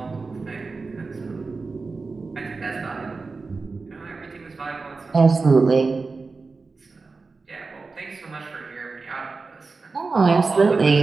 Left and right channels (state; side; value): quieter; left; 4.1 dB